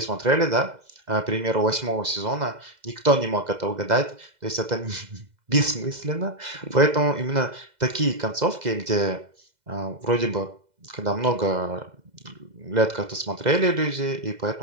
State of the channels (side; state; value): left; late; 2.0 ms